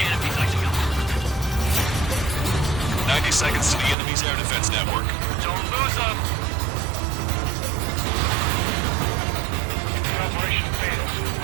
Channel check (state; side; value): drops out; left; at 4.0 s